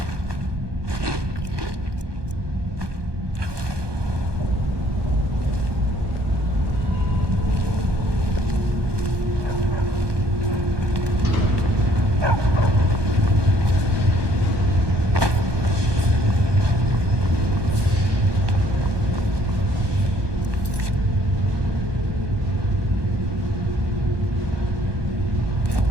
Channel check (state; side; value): late; left; 1.2 ms